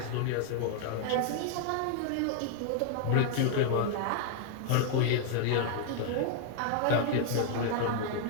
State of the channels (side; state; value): both; different; correlation 0.00